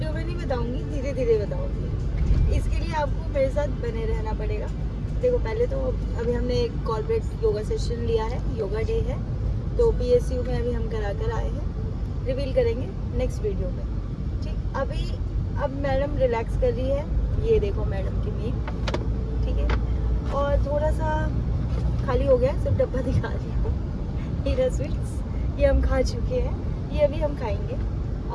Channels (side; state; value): both; identical; correlation 1.00